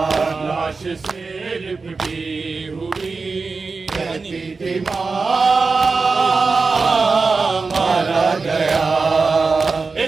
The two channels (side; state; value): left; quieter; 4.3 dB